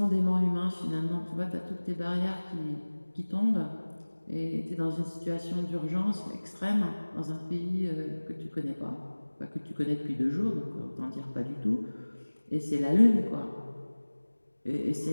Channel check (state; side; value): inverted; both; correlation -1.00